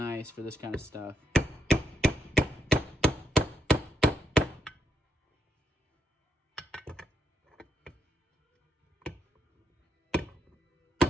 for this kind of stuff.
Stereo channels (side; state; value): both; normal; correlation 0.79